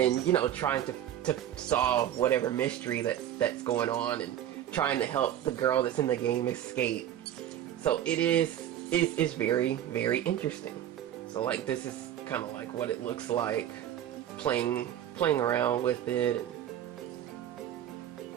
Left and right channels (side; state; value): left; quieter; 11.2 dB